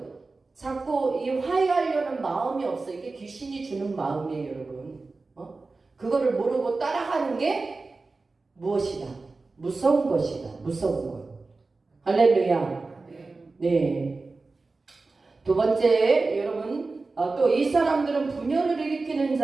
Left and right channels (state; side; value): quieter; left; 3.7 dB